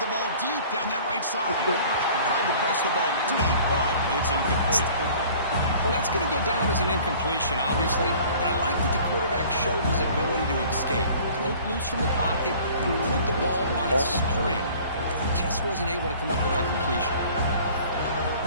ball deep down that right side. Tried to press the ball deep, but it's incomplete. Well, that's going to go down as an incompletion, obviously, but I like that the quarterback showed his ability to escape. Broke loose from the pocket and put the ball on a string. Just wasn't able to come up with that completion.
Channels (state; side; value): inverted; both; correlation -0.49